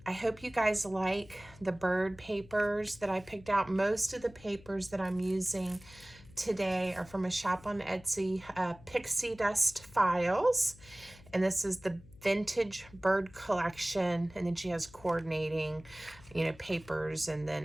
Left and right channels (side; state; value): left; noise; hum, 22 dB below the sound